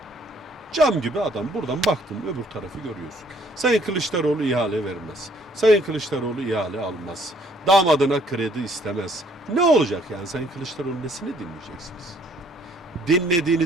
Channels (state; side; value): normal; both; correlation 0.62